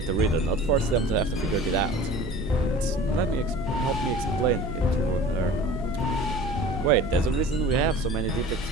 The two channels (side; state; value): both; normal; correlation 0.42